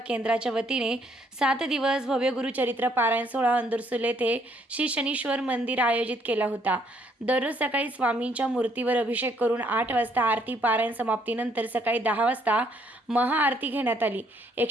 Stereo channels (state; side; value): normal; both; correlation 0.68